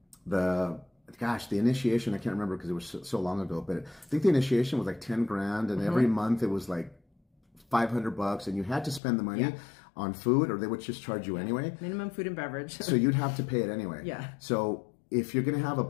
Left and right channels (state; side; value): drops out; right; at 9.0 s